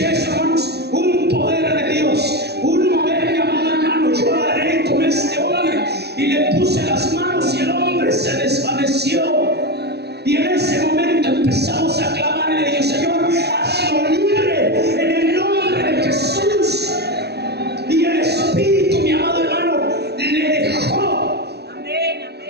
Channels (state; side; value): late; left; 0.48 ms